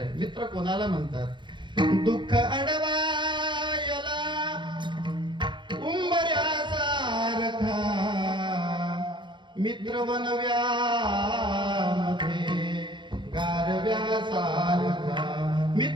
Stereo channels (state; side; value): late; left; 0.23 ms